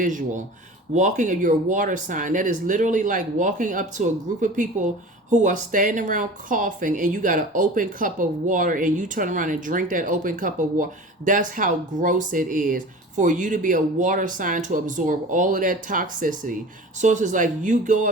Walking of your water sign. That is literally like walking up to a group of people who are standing around coughing, and you got an open cup of water, and you turn around and drink that open cup of water. That's how gross it is for you to be a water sign, to absorb all of that toxicity. So it's just like you go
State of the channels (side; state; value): both; normal; correlation 0.38